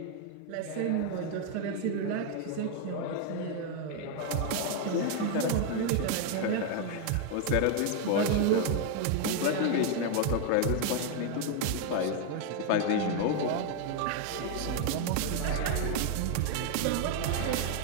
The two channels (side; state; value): both; different; correlation 0.01